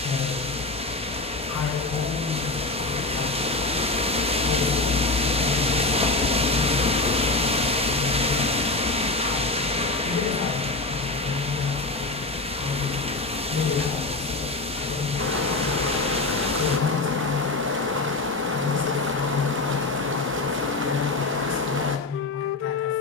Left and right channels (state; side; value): quieter; right; 3.3 dB